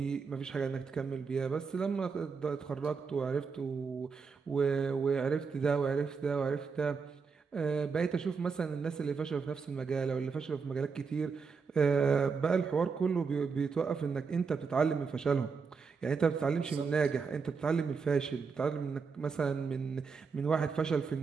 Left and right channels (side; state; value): left; quieter; 5.3 dB